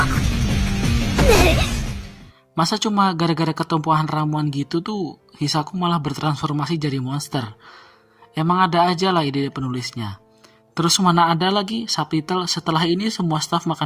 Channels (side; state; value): both; identical; correlation 1.00